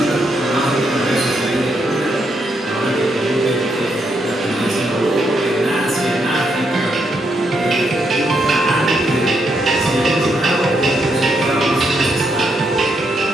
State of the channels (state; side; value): normal; both; correlation 0.78